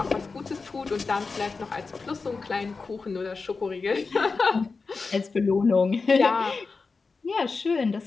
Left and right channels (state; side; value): quieter; right; 4.4 dB